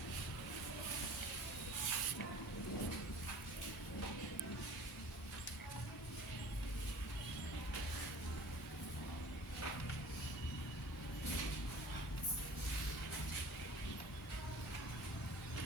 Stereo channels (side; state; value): both; normal; correlation 0.44